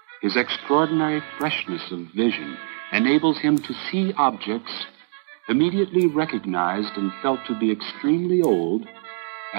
His extraordinary freshness of vision enables him to see objects immediately recognized and felt to be extremely old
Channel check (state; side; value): silent; left; 59 dB below the other